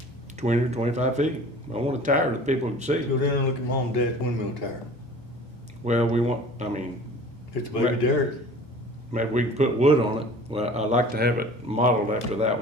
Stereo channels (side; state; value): both; normal; correlation 0.44